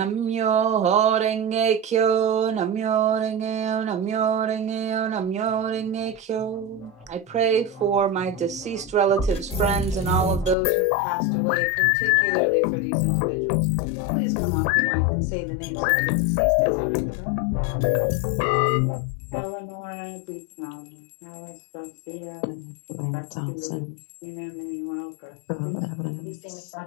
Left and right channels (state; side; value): drops out; right; at 10.6 s